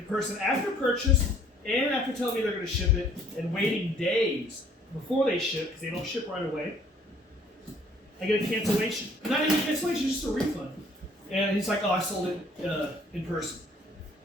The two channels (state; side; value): normal; both; correlation 0.59